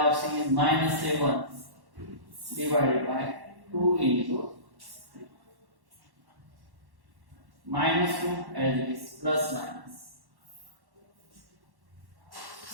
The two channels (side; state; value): left; late; 1.1 ms